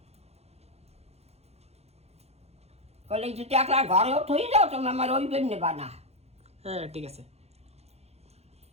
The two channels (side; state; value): left; late; 0.31 ms